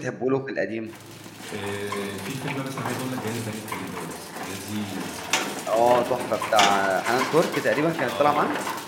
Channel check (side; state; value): both; identical; correlation 1.00